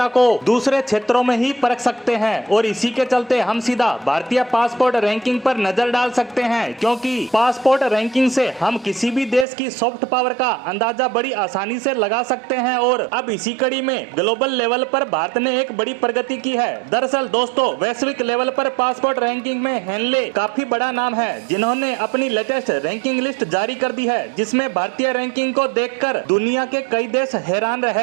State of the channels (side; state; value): left; drops out; at 9.5 s